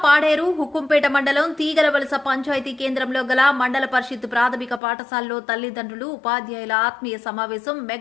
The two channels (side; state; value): right; drops out; at 4.8 s